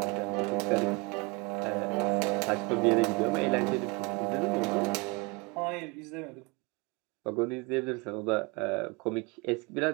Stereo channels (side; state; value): left; quieter; 28.6 dB